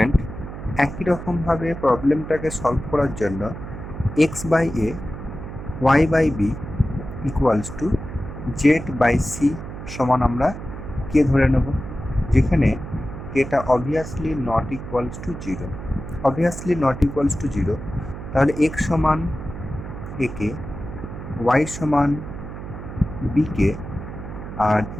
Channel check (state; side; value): noise; right; hum, 10 dB below the sound